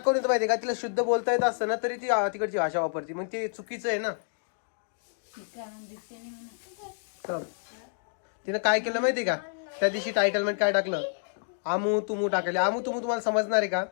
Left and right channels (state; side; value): silent; right; digital silence